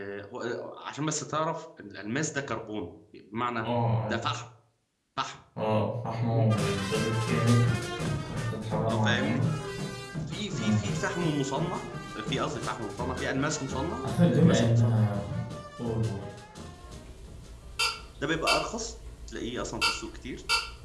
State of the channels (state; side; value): identical; both; correlation 1.00